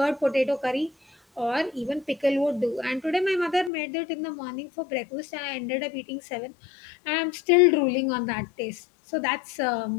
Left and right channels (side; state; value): right; drops out; at 3.7 s